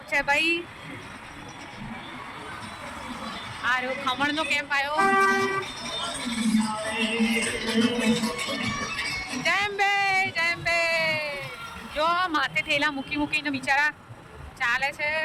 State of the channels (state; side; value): identical; both; correlation 1.00